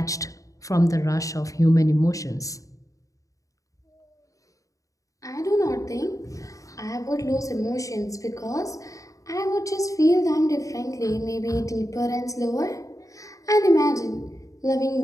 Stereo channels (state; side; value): late; right; 0.16 ms